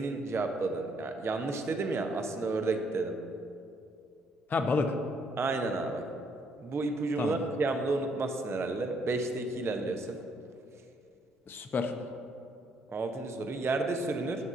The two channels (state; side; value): normal; both; correlation 0.70